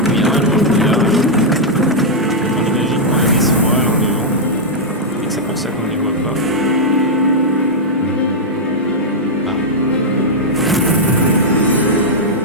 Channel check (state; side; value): normal; both; correlation -0.05